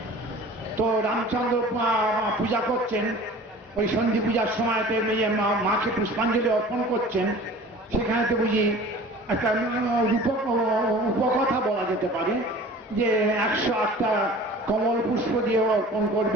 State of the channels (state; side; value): normal; both; correlation 0.43